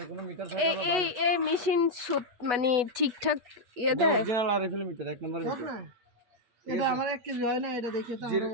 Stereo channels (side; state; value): left; late; 8.1 ms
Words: কোনো মিটার এই থাকলে এই এই মেশিন মানে ঠিকঠাক ইয়ে দেয়? অরিজিনাল আরএফএল মিটার 1 নম্বর বুঝ মিটার। না, এটা আমার 1 কেজি হয় না, এটা দেখে তো জিরো